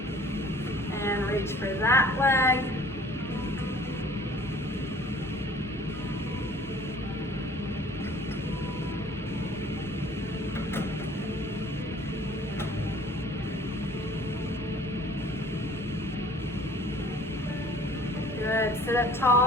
and reach for that leg. Good, sit up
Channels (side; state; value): both; normal; correlation 0.51